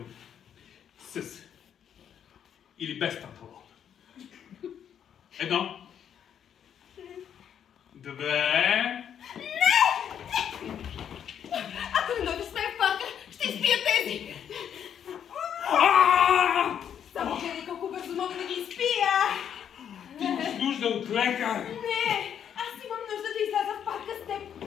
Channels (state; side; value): quieter; right; 8.8 dB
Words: С. Или без панталон. 1. 2. Ако не дойдеш с мен в парка, ще изпия тези! Само гледай колко бързо мога да ги изпия! Ти имаш нужда от лекар! Не! Аз имам нужда да изляза в парка с теб!